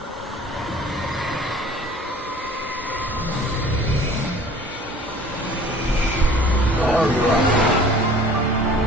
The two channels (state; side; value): normal; both; correlation 0.47